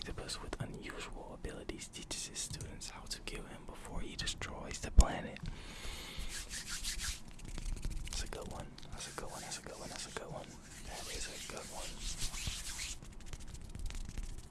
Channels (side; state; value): both; identical; correlation 1.00